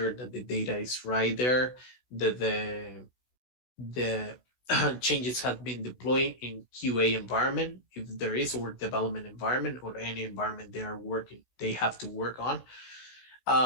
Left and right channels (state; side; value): late; right; 16 ms